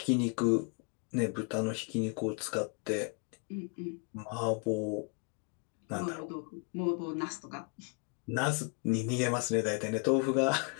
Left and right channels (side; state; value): right; quieter; 36.9 dB